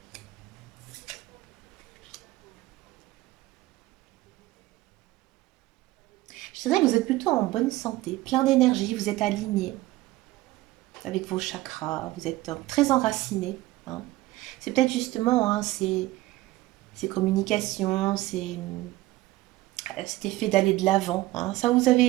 Je dirais que vous êtes plutôt en bonne santé, plein d'énergie, vous êtes aligné avec vos chakras, vous êtes très enraciné. Hein. C'est peut-être justement hein, ces communications, cet effet d'aller de l'avant. Hein. Ça, vous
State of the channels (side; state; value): left; quieter; 17.8 dB